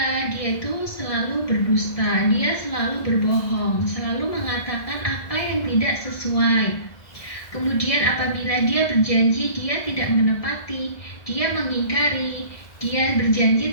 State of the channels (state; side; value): late; right; 1.6 ms